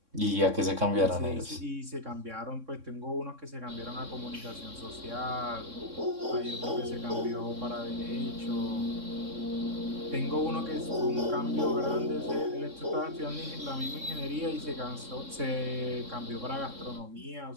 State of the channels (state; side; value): late; left; 3.6 ms